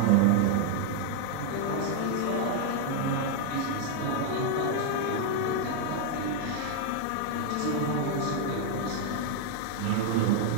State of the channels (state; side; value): different; both; correlation 0.00